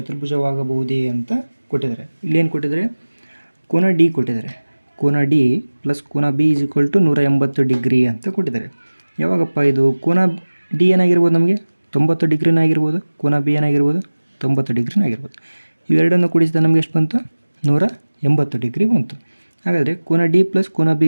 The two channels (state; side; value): inverted; both; correlation -1.00